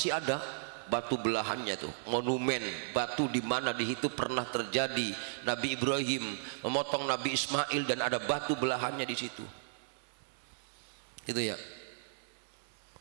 ada batu belahannya tuh, monumen batu di mana di situ pernah terjadi Nabi Ibrahim memotong Nabi Ismail dan ada batu belahannya di situ. Itu ya.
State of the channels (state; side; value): silent; left; 54 dB below the other